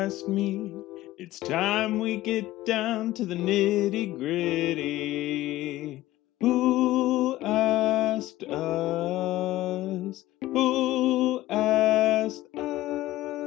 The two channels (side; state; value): right; quieter; 16.0 dB